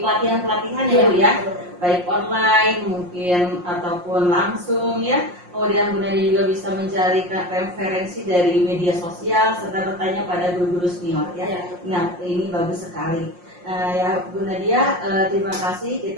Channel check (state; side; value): late; left; 5.6 ms